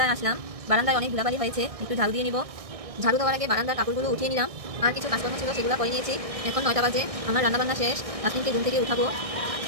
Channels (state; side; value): late; left; 1.6 ms